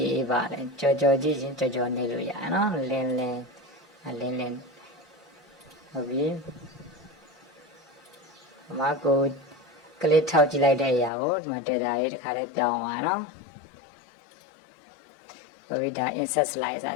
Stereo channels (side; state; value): right; drops out; at 11.1 s